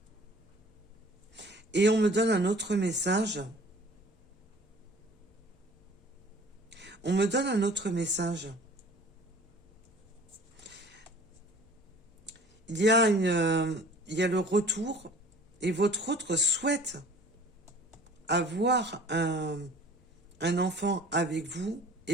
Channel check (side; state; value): left; noise; rumble, 29 dB below the sound